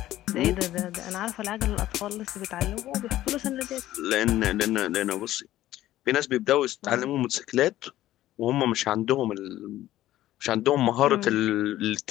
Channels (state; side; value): quieter; right; 14.3 dB